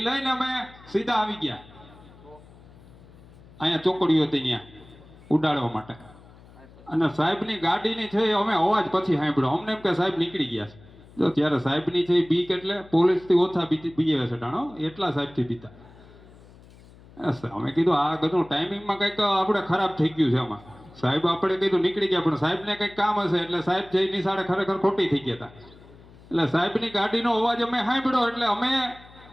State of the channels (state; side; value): noise; left; hum, 23 dB below the sound